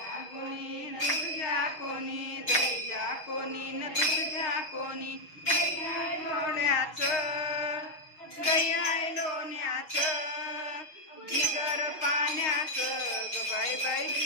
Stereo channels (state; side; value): late; right; 6.4 ms